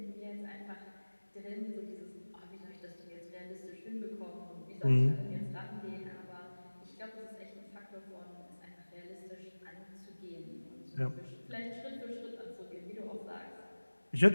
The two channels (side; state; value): both; inverted; correlation -1.00